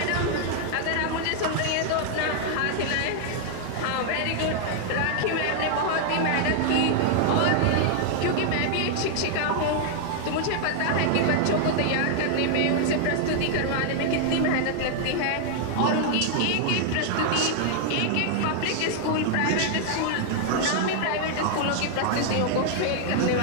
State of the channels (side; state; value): both; different; correlation 0.00